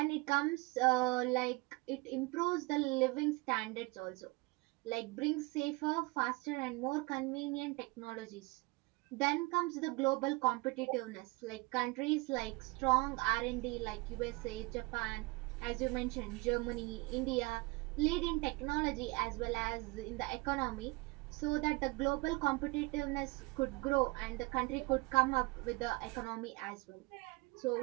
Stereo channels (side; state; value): left; quieter; 25.3 dB